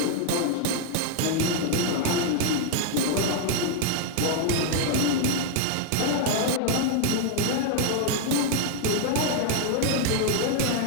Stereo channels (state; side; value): different; both; correlation 0.00